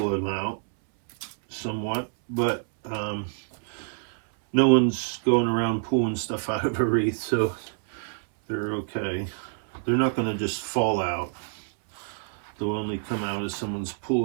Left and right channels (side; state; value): left; silent; 60 dB below the other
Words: them out somewhat, but no one's going around pulling stuff out of a wreath, so they're okay. They're not going to just fall out. They'll only come out as someone's